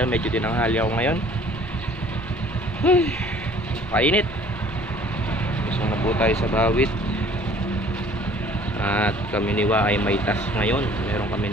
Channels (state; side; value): normal; both; correlation 0.53